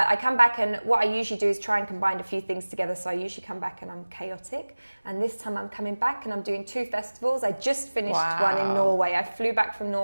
I come back, and what I usually do is try and combine a few things together. So I usually come back and I'm chaotic. And this time I'm coming back and I'm doing 2 festivals. I just finished one in Norway. I flew back from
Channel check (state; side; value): inverted; both; correlation -1.00